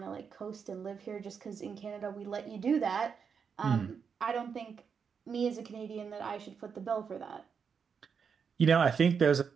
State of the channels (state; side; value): quieter; left; 6.4 dB